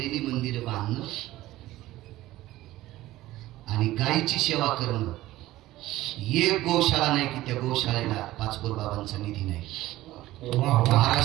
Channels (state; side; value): quieter; left; 16.3 dB